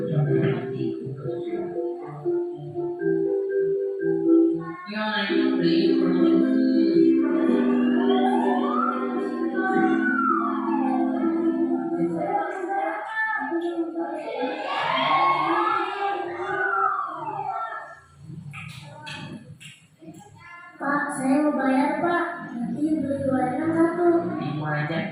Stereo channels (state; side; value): identical; both; correlation 1.00